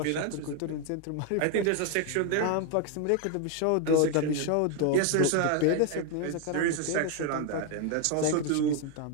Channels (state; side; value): different; both; correlation 0.01